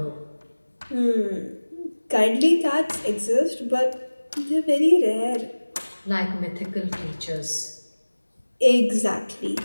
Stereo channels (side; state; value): both; inverted; correlation -1.00